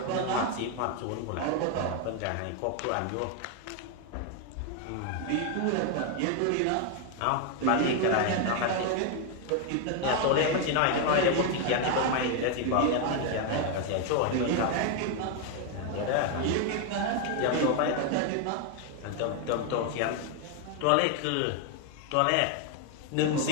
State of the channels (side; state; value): both; different; correlation 0.01